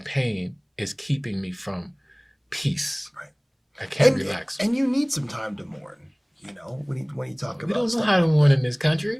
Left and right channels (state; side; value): identical; both; correlation 1.00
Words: is keeping me from peace. Right. I can't relax. And you need some time to mourn, you know, when you talk about We don't know how to mourn in this